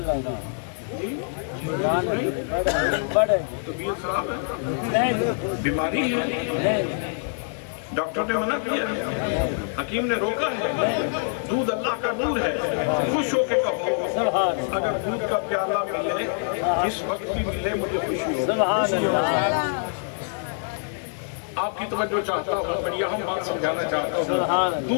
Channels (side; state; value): right; silent; digital silence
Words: بڑے طبیعت خراب ہے، نہیں، بیماری ہے، نہیں، ڈاکٹر نے منع کیا ہے، حکیم نے روکا ہے، دودھ اللہ کا نور ہے، خوش ہو کے کہو اگر دودھ کا پیالہ ملے جس وقت بھی ملے مجھے خوشی ہو۔ سبحان اللہ۔ آپ کی توجہ چاہتا ہوں، بڑی اہم بات سمجھانا چاہتا ہوں۔